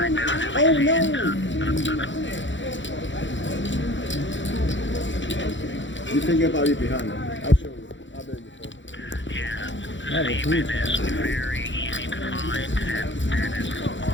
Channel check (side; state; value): right; late; 0.54 ms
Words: Oh no! You think about it behind me. I'll show you. I've been before. That is huge.